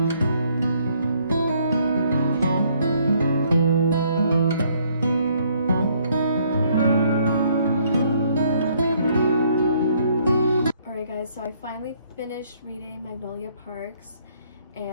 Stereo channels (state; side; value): inverted; both; correlation -0.66